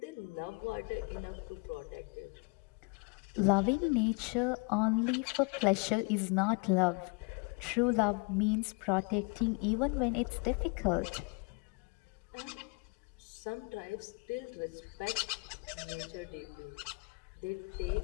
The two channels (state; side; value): quieter; right; 30.8 dB